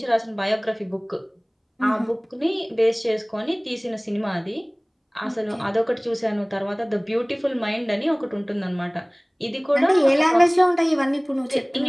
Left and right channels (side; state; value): both; identical; correlation 1.00